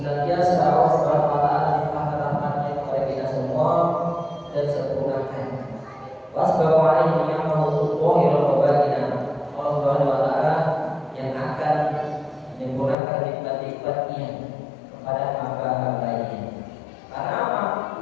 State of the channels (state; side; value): drops out; right; at 13.0 s